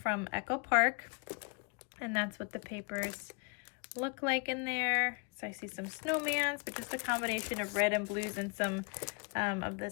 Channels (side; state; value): right; quieter; 32.9 dB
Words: Echo Park. And that's what the papers look like in there. So I see some snowmans, but just a combination of red and blues and some of